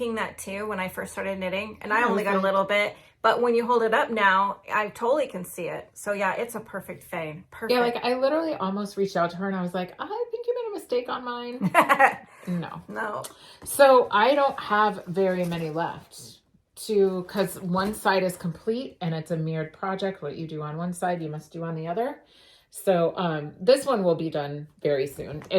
that too when I first started knitting, and I only got a little bit, but when you hold it up now, I totally can see it. So yeah, it's a perfect fade. Perfect. Yeah, like I literally almost reached out to her and I was like, I think you made a mistake on mine. No. So I don't have very many left because one side is complete and it's a mirrored project. What you do on one side, you must do on the other. So this one will be done very soon.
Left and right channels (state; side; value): identical; both; correlation 1.00